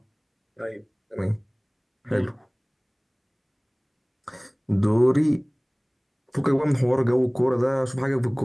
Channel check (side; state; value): both; identical; correlation 1.00